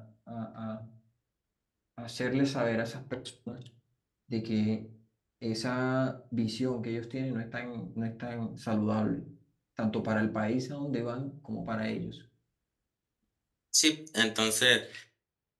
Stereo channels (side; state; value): both; identical; correlation 1.00